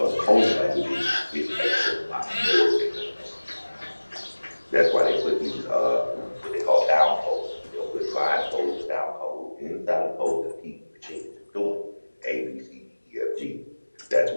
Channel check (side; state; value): both; inverted; correlation -1.00